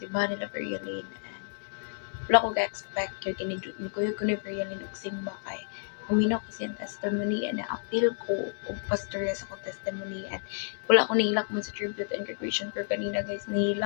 nila Veryaline, and wala ko ga-expect yun kinidot ni Kuya ko ni Veryaline og simba kay huminaw kasi ang testimony and na-appeal ko og pastorya sa akong testimony, and wala ko nahilak mo sa tribute and graduation pero kanina guys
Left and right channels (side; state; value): right; silent; digital silence